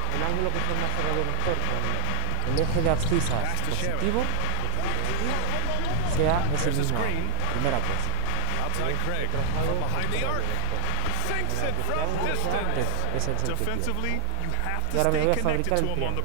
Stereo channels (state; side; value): different; both; correlation 0.00